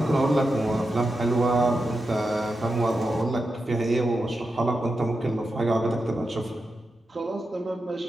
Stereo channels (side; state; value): both; normal; correlation 0.88